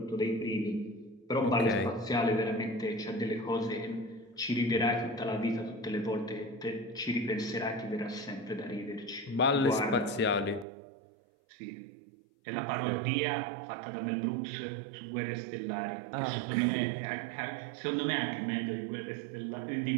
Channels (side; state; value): left; drops out; at 10.7 s